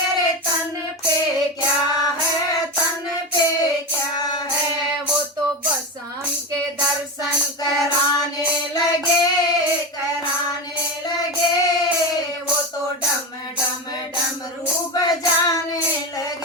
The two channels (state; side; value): normal; both; correlation 0.19